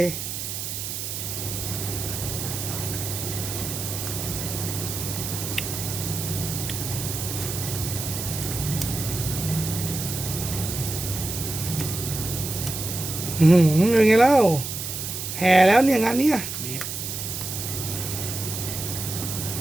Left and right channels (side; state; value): right; noise; hiss, 5 dB below the sound